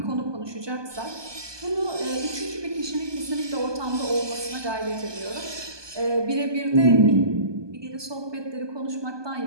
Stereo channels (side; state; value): left; late; 1.2 ms